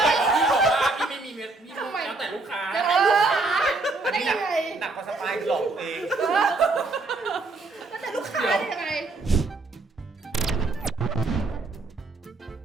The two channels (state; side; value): quieter; left; 3.5 dB